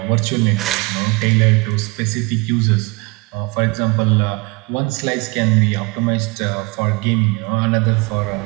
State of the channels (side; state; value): left; quieter; 26.3 dB